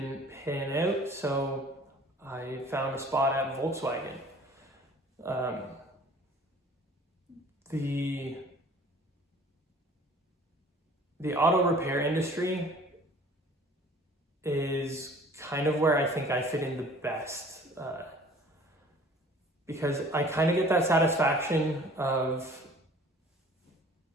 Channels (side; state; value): both; normal; correlation 0.50